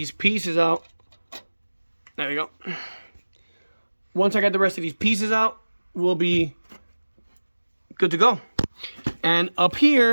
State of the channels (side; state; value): both; inverted; correlation -1.00